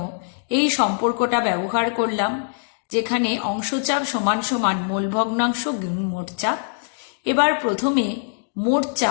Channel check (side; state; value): right; silent; 61 dB below the other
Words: এই সম্পর্কটা ব্যবহার করলাম, যেখানে অংশচাপ সমান সমান মোল ভগ্নাংশ গুণ মোট চাপ। এবার প্রথমে মোট